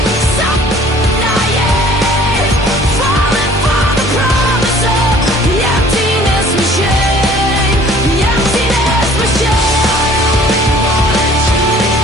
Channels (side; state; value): both; normal; correlation 0.53